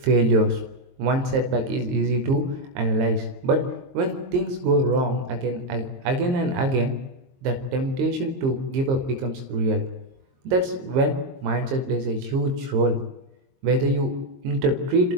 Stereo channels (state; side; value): late; left; 22 ms